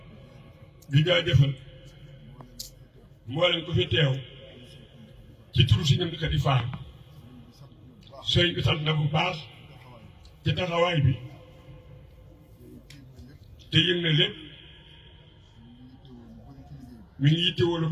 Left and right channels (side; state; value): both; identical; correlation 1.00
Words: di jaajëfal mboolem ku fi teew ci turu si ñoom di faar sëriñ bi sant na bu baax ci taxawaay bi te yëg na lépp mi ngi yittewoo lu